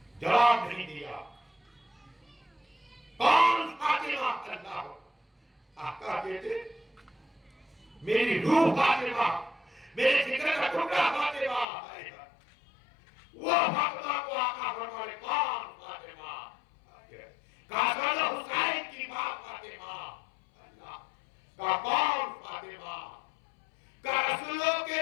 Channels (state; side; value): drops out; right; at 11.7 s